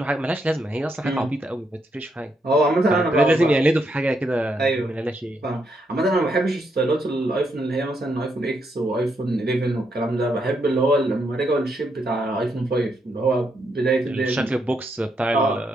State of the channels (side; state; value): both; normal; correlation 0.78